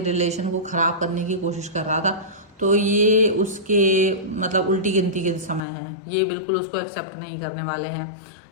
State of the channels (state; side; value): drops out; right; at 5.6 s